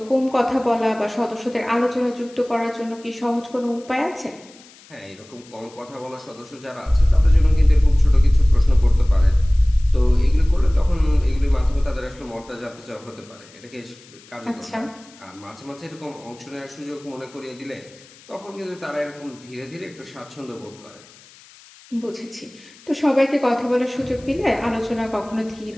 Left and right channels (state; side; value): noise; left; hiss, 24 dB below the sound